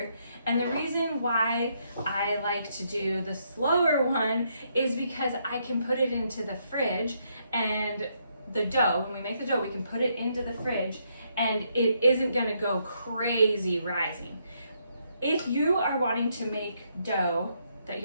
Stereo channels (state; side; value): inverted; both; correlation -0.75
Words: And the reason why I like to do the slower one is because I can put it into the fridge, and the dough, when we make the dough, we can put it into the fridge and it isn't gonna go crazy rising. If you are wanting to make dough that